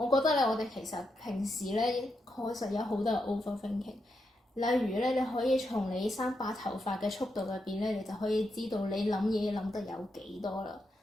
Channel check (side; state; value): both; normal; correlation 0.84